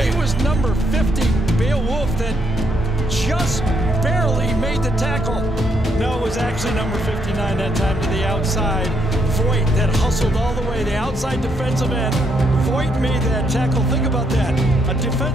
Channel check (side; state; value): both; normal; correlation 0.75